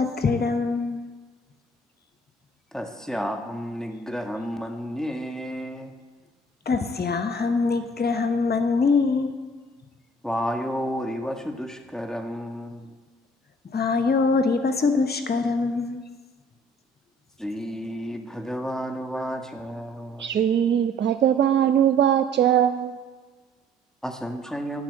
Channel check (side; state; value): both; normal; correlation 0.55